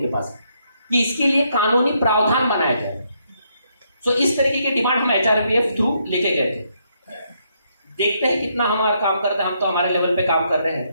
पास कि इसके लिए कानूनी प्रावधान बनाया जाए। सो इस तरीके की डिमांड हम HRPF थ्रू लेके गए थे। देखते हैं कितना हमारा काम करते हैं। हम तो हमारे लेवल पे काम कर रहे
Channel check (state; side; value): inverted; both; correlation -0.75